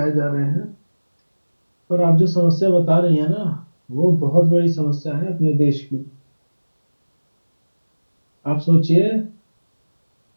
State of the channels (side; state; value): both; inverted; correlation -1.00